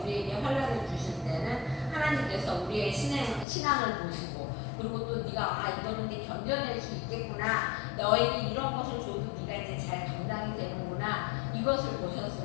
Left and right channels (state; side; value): drops out; right; at 3.5 s